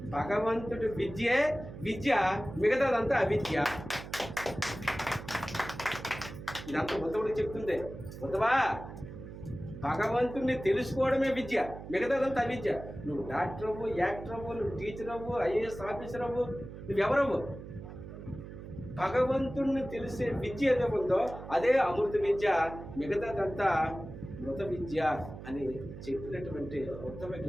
భగవంతుడి విద్యే విద్య, మిగతాదంతా అవిద్య. ఇదంతా ఉద్ధవుడికి చెప్తుంది. ఉద్ధవా, భగవంతుడిని తెలుసుకోవడమే విద్య, మిగతాదంతా అవిద్య. నువ్వు డాక్టర్ అవ్వు, యాక్టర్ అవ్వు, నువ్వు టీచర్ అవ్వు, ఐఏఎస్ ఆఫీసర్ అవ్వు, నువ్వెవరవ్వు. భగవంతుడిని తెలిసే విద్య ఏదో ఉందో అదే అమృత విద్య, మిగతాదంతా మృత విద్య అని చెప్పినటువంటి ఉత్తమ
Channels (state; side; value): noise; right; hum, 12 dB below the sound